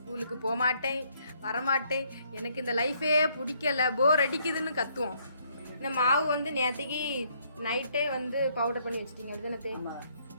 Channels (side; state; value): both; inverted; correlation -0.69